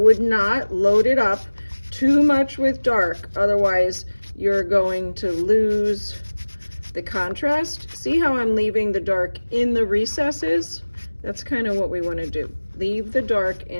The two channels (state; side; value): inverted; both; correlation -1.00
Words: not load it up too much with dark, otherwise you're going to lose the contrast. See how I'm leaving the dark in the recesses? That's kind of what we want to do. Leave the dark